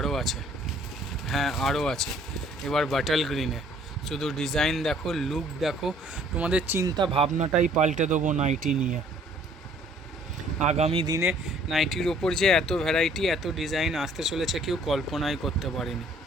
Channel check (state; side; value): normal; both; correlation 0.58